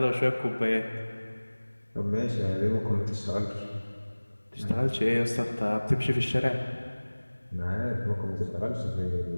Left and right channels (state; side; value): inverted; both; correlation -1.00